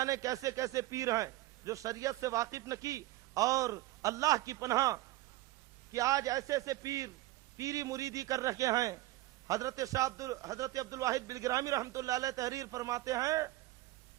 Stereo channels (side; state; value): left; quieter; 17.5 dB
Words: کیسے کیسے پیر ہیں جو شریعت سے واقف نہ کی۔ اور اللہ کی پناہ کہ آج ایسے ایسے پیر پیری مریدی کر رکھے ہیں۔ حضرت عبد الواحد بلگرامی رحمۃ اللہ علیہ تحریر فرماتے ہیں،